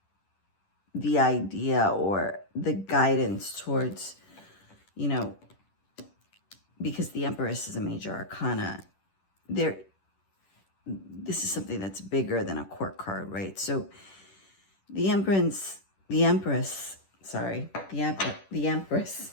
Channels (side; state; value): right; late; 10 ms